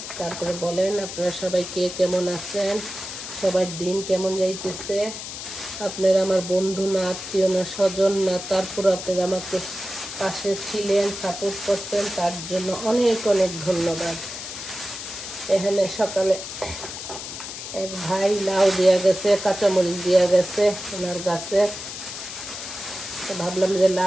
তারপরে বলেন আপনারা সবাই কে কেমন আছেন, সবার দিন কেমন যাইতেছে। আপনারা আমার বন্ধু না, আত্মীয় না, স্বজন না, তারপর আপনারা আমাকে পাশে ছিলেন, সাপোর্ট করতেন, তার জন্য অনেক অনেক ধন্যবাদ। এখানে সকালে এক ভাই লাউ দেওয়া গেছে, কাঁচামরিচ দেওয়া গেছে ওনার গাছে। ভাবলাম যে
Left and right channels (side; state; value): left; noise; hiss, 9 dB below the sound